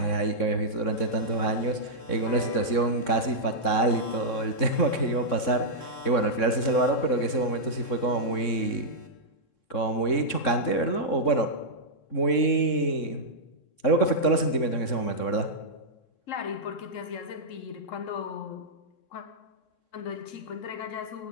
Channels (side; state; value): right; late; 3.7 ms